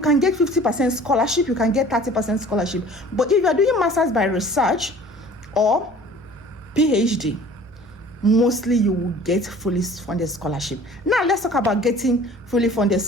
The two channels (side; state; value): both; normal; correlation 0.47